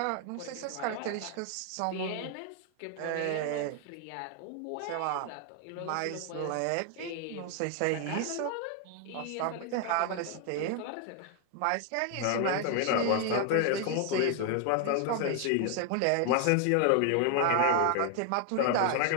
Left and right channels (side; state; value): both; different; correlation 0.00